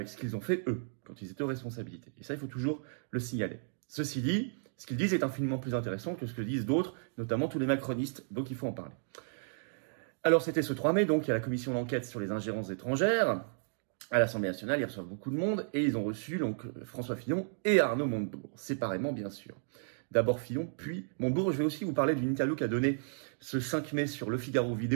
ce qu'ils ont fait eux, quand ils étaient aux responsabilités. Et ça, il faut toujours le signaler. Ceci dit, ce qu'ils disent est infiniment plus intéressant que ce que disent d'autres, notamment tous les macronistes, donc il faut en parler. Alors c'était ce 3 mai, donc il y a la commission d'enquête sur les ingérences étrangères, à l'Assemblée nationale, ils reçoivent beaucoup de monde, et ils ont reçu donc François Fillon et Arnaud Montebourg, séparément bien sûr. D'abord Fillon, puis Montebourg. Je vais aussi vous parler d'une interview qu'a donnée ce 5 mai sur Le Figaro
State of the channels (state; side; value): silent; left; digital silence